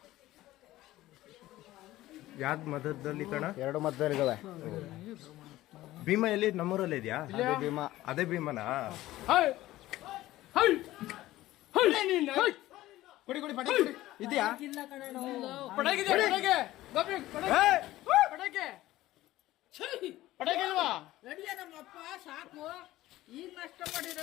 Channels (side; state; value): right; quieter; 16.1 dB